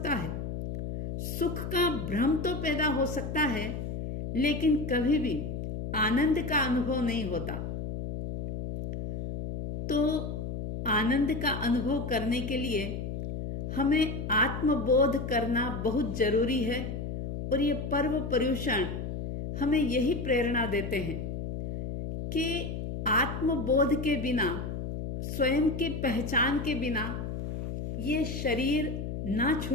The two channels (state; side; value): noise; left; hum, 4 dB below the sound